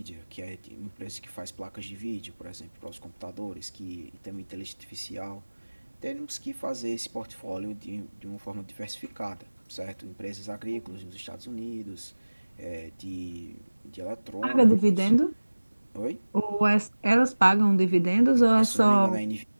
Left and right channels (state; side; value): inverted; both; correlation -1.00